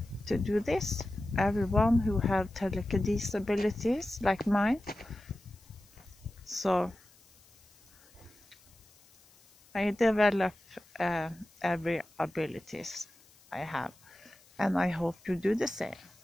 to do this. Everyone who have telekinesis abilities like mine. So I develop every abilities I have, and I hope you do the same.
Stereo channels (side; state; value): left; noise; hiss, 28 dB below the sound